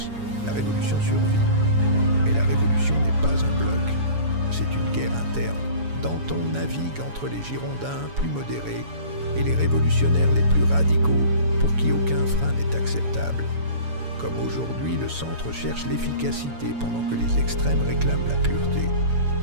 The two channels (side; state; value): left; late; 7.1 ms